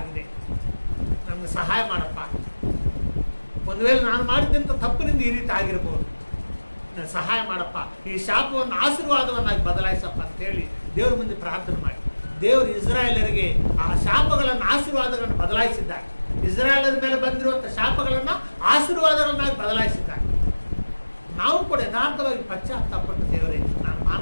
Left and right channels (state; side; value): inverted; both; correlation -1.00